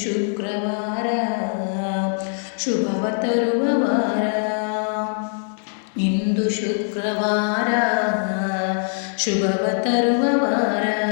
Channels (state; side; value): silent; right; 58 dB below the other